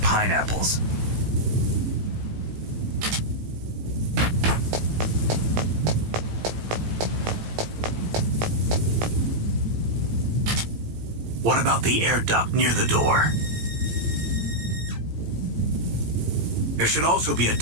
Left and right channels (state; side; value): late; left; 18 ms